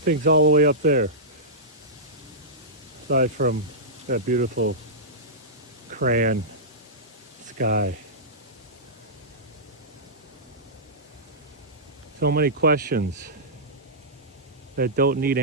all the way up there? Aside from that beautiful crayon sky. So many questions that don't need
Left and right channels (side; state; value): both; normal; correlation -0.15